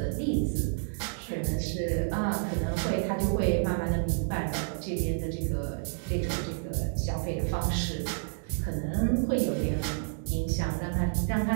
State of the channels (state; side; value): silent; left; digital silence